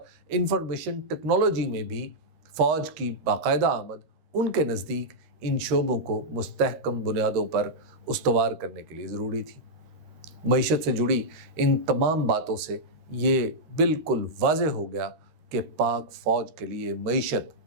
انفارمیشن ٹیکنالوجی میں بھی فوج کی باقاعدہ آمد ان کے نزدیک ان شعبوں کو مستحکم بنیادوں پر استوار کرنے کے لیے ضروری تھی۔ معیشت سے جڑی ان تمام باتوں سے یہ بالکل واضح ہو گیا کہ پاک فوج کے لیے معیشت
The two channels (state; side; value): late; left; 13 ms